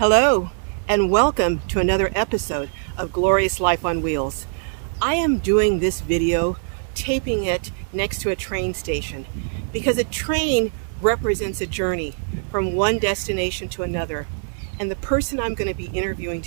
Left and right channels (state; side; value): silent; left; digital silence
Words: and welcome to another episode of Glorious Life on Wheels. I am doing this video, taping it next to a train station, because a train represents a journey from one destination to another. And the person I'm going to be interviewing